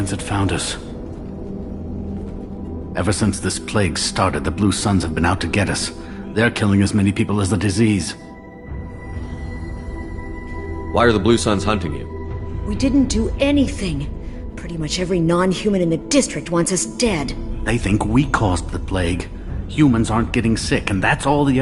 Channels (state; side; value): identical; both; correlation 1.00